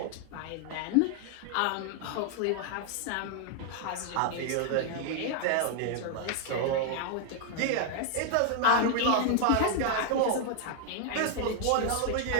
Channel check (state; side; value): different; both; correlation 0.00